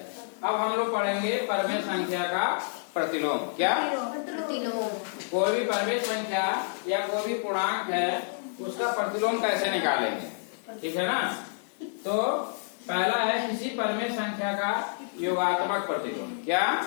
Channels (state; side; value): silent; right; 59 dB below the other